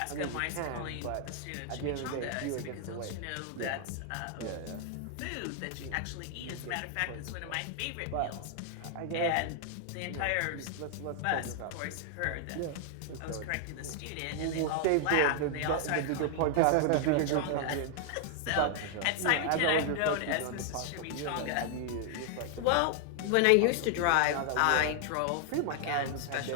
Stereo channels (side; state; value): both; different; correlation 0.00